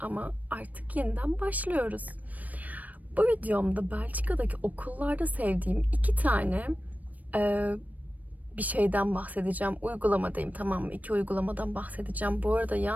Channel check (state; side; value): late; left; 0.076 ms